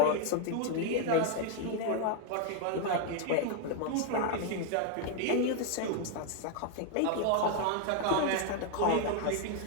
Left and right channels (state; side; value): different; both; correlation 0.01